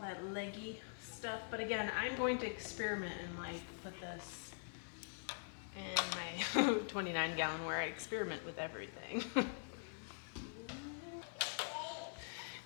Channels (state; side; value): silent; right; digital silence